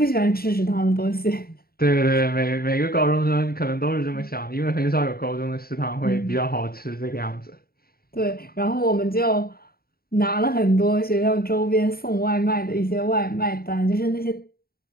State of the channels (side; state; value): right; late; 0.44 ms